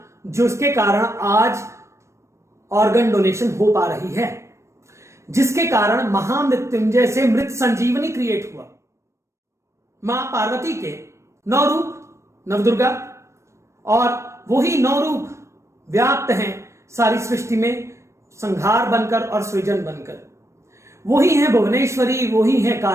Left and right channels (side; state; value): left; late; 0.14 ms